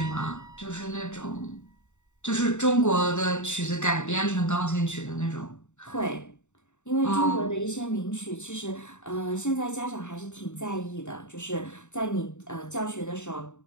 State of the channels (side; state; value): right; late; 0.84 ms